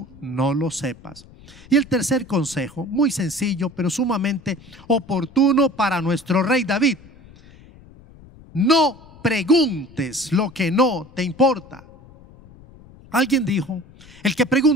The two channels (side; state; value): left; noise; rumble, 23 dB below the sound